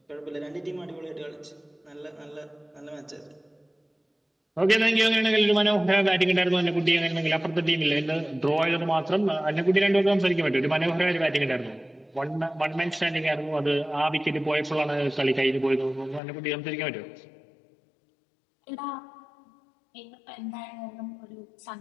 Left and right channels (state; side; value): drops out; right; at 16.2 s